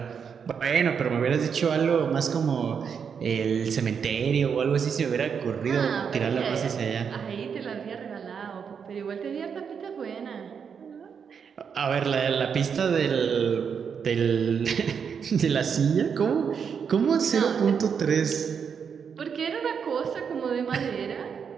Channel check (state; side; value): quieter; left; 6.8 dB